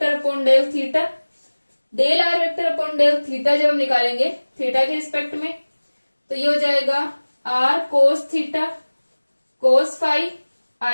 upon del theta. Del are vector upon del theta जब हम निकालेंगे थीटा के रिस्पेक्ट में, तो ये हो जाएगा are cos theta cos phi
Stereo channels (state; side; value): inverted; both; correlation -1.00